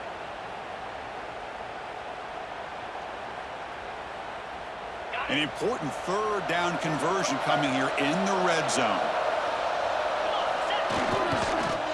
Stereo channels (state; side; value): identical; both; correlation 1.00